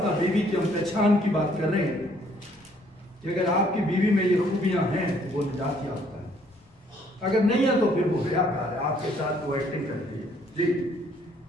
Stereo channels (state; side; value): normal; both; correlation 0.64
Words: बीवी की हम पहचान की बात कर रहे हैं कि अगर आपकी बीवी में ये खूबियां हैं तो वो निजात याफ्ता है, अगर नहीं है तो फिर वो रियाकार है, आपके साथ वो एक्टिंग करती है। जी,